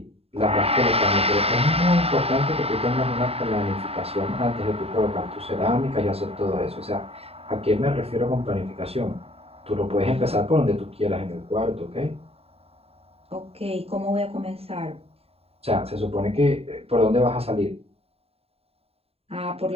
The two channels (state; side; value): late; left; 0.29 ms